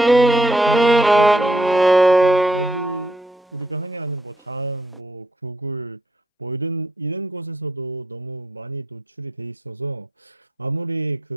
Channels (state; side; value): normal; both; correlation 0.73